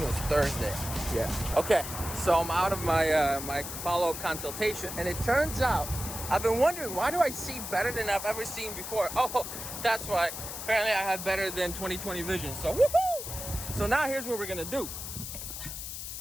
it was Thursday. Yeah. Okay, so I'm out of my my follow-up consultation, and it turns out I've been wondering, why do I see better than I've ever seen before? Oh, that's why. Apparently I have better than 20/20 vision. So woohoo! So now here's what we're gonna do.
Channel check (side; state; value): left; noise; hiss, 7 dB below the sound